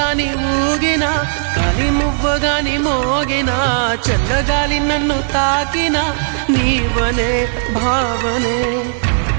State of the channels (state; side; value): silent; left; digital silence